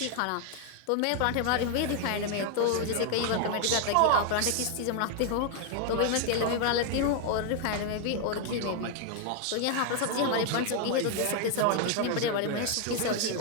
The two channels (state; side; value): different; both; correlation 0.00